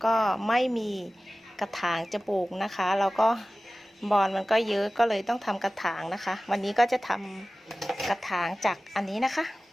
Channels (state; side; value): normal; both; correlation 0.97